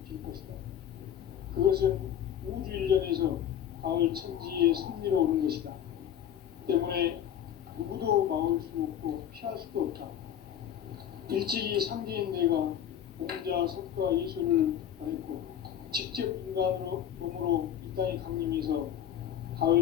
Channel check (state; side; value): quieter; right; 10.0 dB